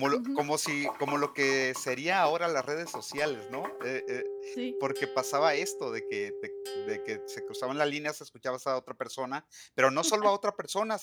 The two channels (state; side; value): identical; both; correlation 1.00